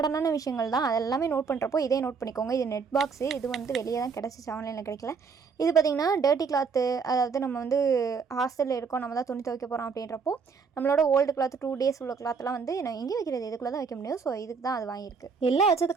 விஷயங்கள் தான். அது எல்லாமே நோட் பண்ணுறப்போ இதே நோட் பண்ணிக்கோங்க. இது நெட் பாக்ஸு. இது வந்து வெளியே தான் கிடச்சிச்சு, ஆன்லைனில் கிடைக்கல. இது பார்த்திங்கன்னா டர்ட்டி கிளாத்து. அதாவது நம்ம வந்து ஹாஸ்டலில் இருக்கோம், நம்ம தான் துணி துவைக்க போகிறோம் அப்படின்றப்போ நம்மளோட ஓல்டு கிளாத் 2 days உள்ள கிளாத்லாம் வந்து நான் எங்கே வைக்கிறது, இதுக்குள்ளே தான் வைக்க முடியும். ஸோ இதுக்கு தான் அது வாங்கியிருக்கு. எல்லாம்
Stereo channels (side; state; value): left; quieter; 5.5 dB